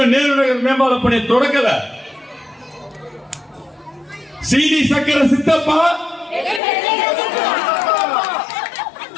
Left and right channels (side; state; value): right; drops out; at 6.6 s